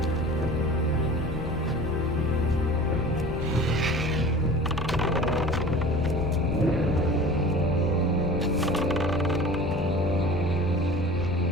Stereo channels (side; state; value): left; noise; rumble, 9 dB below the sound